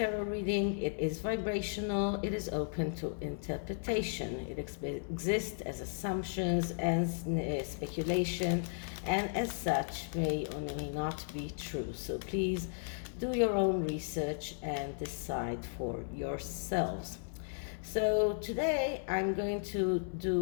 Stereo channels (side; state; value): right; silent; 54 dB below the other